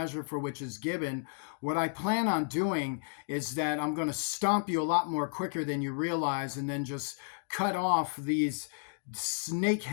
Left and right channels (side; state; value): right; silent; digital silence